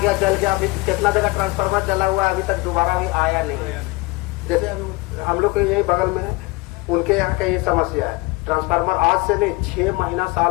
जल गया, अभी कितना जगह ट्रांसफार्मर जला हुआ है, अभी तक दोबारा भी आया नहीं है। जैसे हम लोग के यही बगल में है, उनके यहाँ का ये समस्या है, ट्रांसफार्मर आज से नहीं 6 महीना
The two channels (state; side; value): quieter; right; 23.4 dB